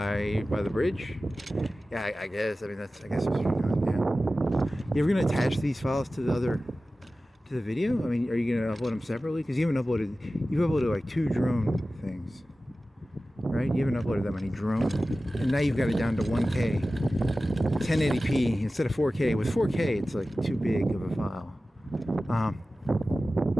by the bridge? Yeah, I guess. I mean, I guess that's what you're doing. Yeah. You ever gonna attach these files to the video? I mean, are you gonna upload them separately? Because you've uploaded like 2 drone things, right? You haven't uploaded that many drone, and now you've got it down to 1K, 1080p instead of 4K. With 4K, it's like too big of a file.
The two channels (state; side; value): normal; both; correlation 0.95